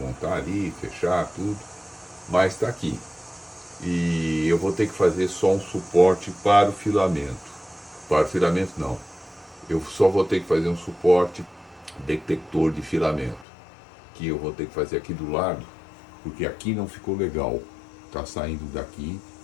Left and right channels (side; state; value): right; drops out; at 13.5 s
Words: ali, fechar tudo, mas tá aqui. E eu vou ter que fazer só um suporte para o filamento. Para o filamento não, eu só vou ter que fazer um suporte detector de filamento, que eu vou ter que fazer aqui do lado, porque aqui não ficou legal, tá saindo daqui